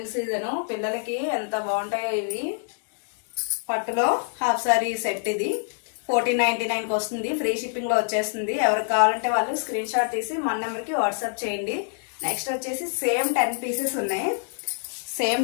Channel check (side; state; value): right; silent; digital silence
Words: సీజన్. పిల్లలకి ఎంత బాగుంటాయో ఇవి. పట్టులో హాఫ్ సారీ సెట్ ఇది 1499కి వస్తుంది. ఫ్రీ షిప్పింగ్ లో వచ్చేస్తుంది. ఎవరికి కావాలంటే వాళ్ళు స్క్రీన్ షాట్ తీసి మన నెంబర్కి వాట్సాప్ చేయండి. నెక్స్ట్ వచ్చేసి సేమ్ 10 పీసెస్